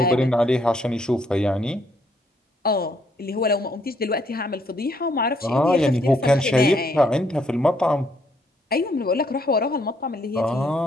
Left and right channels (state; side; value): normal; both; correlation 0.70